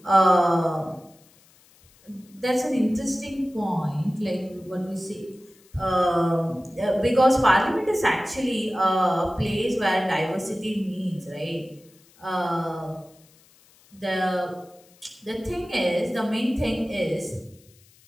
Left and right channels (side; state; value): left; noise; hiss, 29 dB below the sound